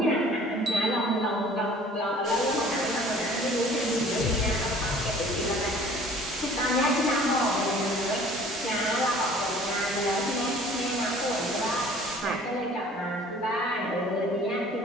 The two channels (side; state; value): both; normal; correlation 0.50